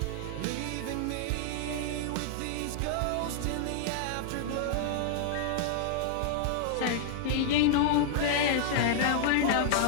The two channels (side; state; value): both; different; correlation -0.01